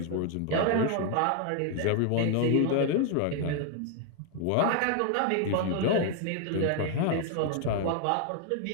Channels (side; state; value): both; different; correlation 0.00